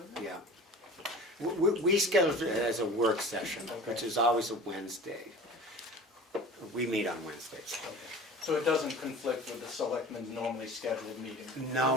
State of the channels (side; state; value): both; normal; correlation 0.39